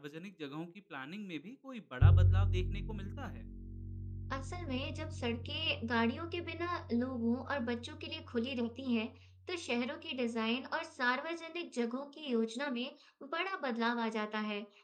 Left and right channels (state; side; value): identical; both; correlation 1.00